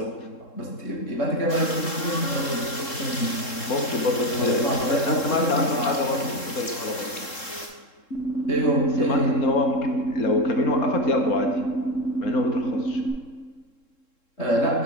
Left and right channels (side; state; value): right; late; 3.7 ms